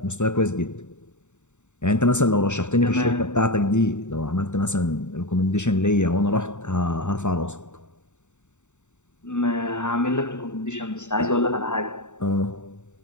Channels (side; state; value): right; late; 0.84 ms